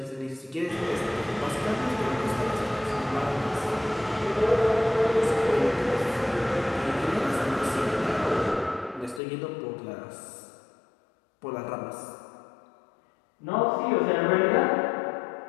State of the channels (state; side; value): drops out; right; at 9.2 s